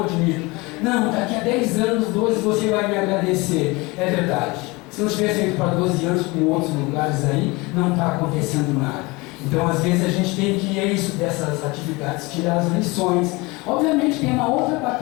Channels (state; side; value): quieter; right; 24.4 dB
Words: admito. Não, daqui a 10 anos, 12, você vai me agradecer. É verdade. Se não tivesse ido para 12 anos com outros lugares aí, não está acontecendo nada. Então, às vezes, a gente tem que, dessas atividades, tirar as lições. Obviamente, tem uma outra